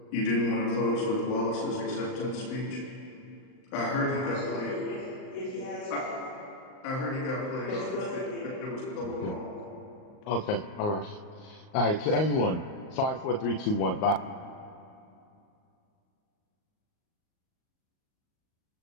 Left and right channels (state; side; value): late; right; 38 ms